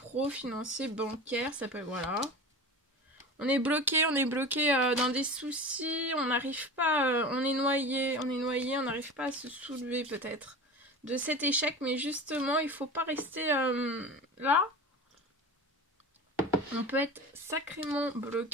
financier, bancaire, ça peut, voilà. On est bloqué dans des soucis, on n'arrive pas, on est noyé, on n'arrive pas à se soulever peut-être de cet échec, mais justement, il faut pas rester là. On peut être sacrément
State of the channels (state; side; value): normal; both; correlation 0.32